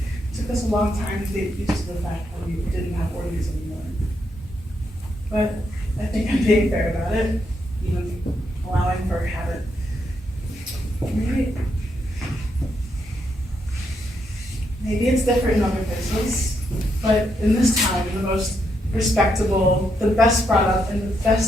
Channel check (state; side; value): normal; both; correlation 0.79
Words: took us a long time to get used to the fact that we didn't have orgies anymore. But I think I'm being fair about it, even allowing for habit. Maybe it's different in other places, but in this town, the most respectable, the best brought up, and the